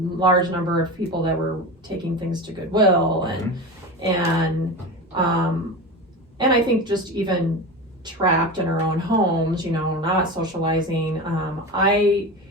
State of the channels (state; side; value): normal; both; correlation 0.26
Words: number of people that were taking things to Goodwill, and I think just even trapped in our own homes, not socializing.